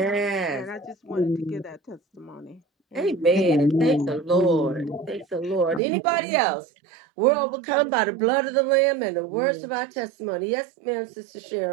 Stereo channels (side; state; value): left; drops out; at 5.8 s